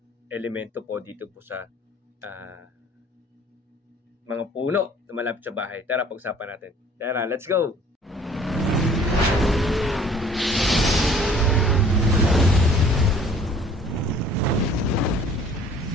elemento po dito po sa mga puno na malapit sa bahay. Tara, pag-usapan natin. Tara, let's go!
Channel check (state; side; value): normal; both; correlation 0.53